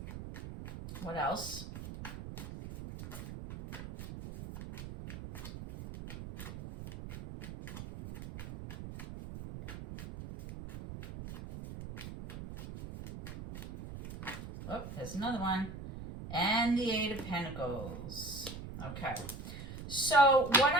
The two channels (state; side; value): noise; right; rumble, 10 dB below the sound